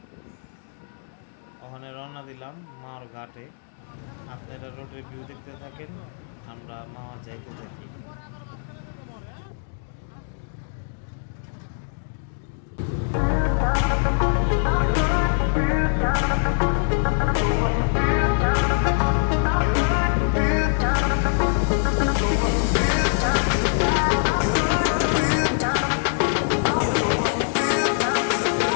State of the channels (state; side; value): silent; right; digital silence